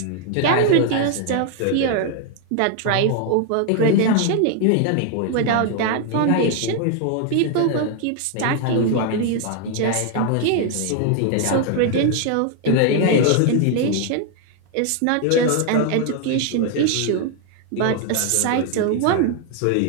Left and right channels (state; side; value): different; both; correlation 0.00